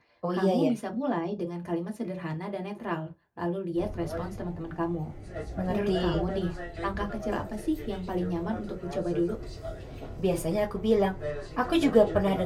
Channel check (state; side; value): identical; both; correlation 1.00